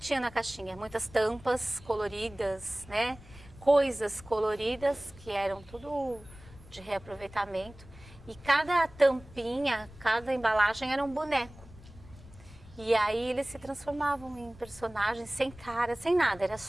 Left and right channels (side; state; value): left; noise; rumble, 20 dB below the sound